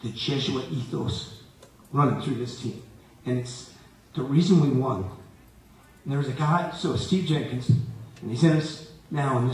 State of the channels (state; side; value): identical; both; correlation 1.00